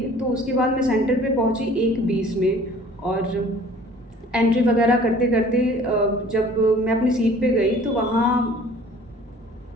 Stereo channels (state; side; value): normal; both; correlation 0.50